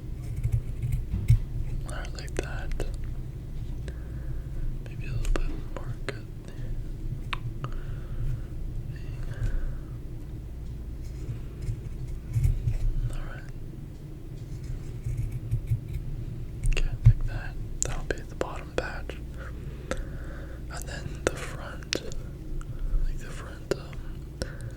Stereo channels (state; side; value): identical; both; correlation 1.00